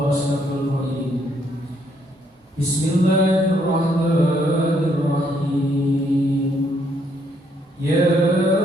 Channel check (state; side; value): normal; both; correlation 0.71